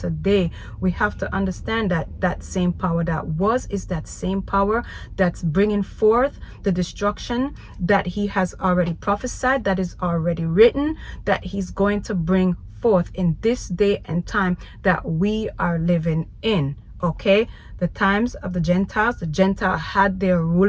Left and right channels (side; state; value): both; identical; correlation 1.00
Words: we have to understand that that same power that was is that same power that's bringing forth the destruction that he has already prophesied, that is already written, that he's going to bring forth in this day and time that we are living in. Okay, the times of the Gentiles had their